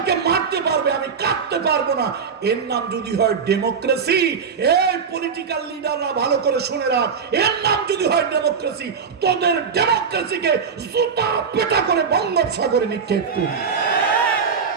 মারতে পারবে, আমি কাটতে পারবো না। এর নাম যদি হয় ডেমোক্রেসি, এই পলিটিক্যাল লিডাররা ভালো করে শুনে রাখ, এর নাম যদি হয় ডেমোক্রেসি, তোদের ডেমোক্রেসিকে জুতা পেটা করে বঙ্গোপসাগরে নিক্ষেপ করি।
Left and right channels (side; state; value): left; quieter; 6.1 dB